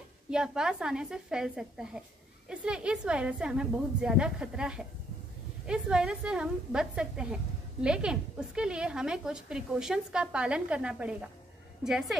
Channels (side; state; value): both; normal; correlation 0.70